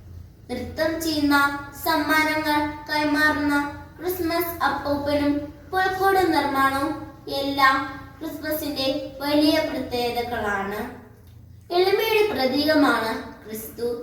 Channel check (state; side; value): identical; both; correlation 1.00